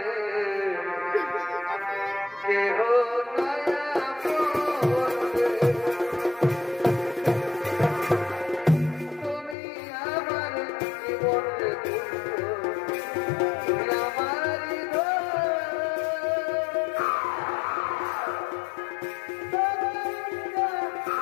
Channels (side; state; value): right; drops out; at 9.6 s